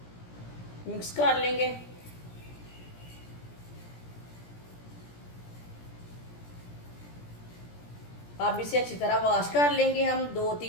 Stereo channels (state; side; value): late; right; 17 ms